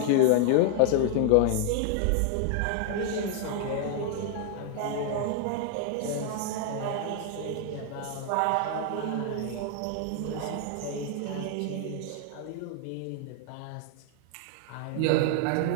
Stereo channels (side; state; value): both; different; correlation 0.00